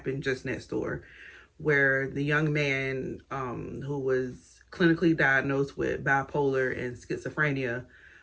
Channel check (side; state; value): both; identical; correlation 1.00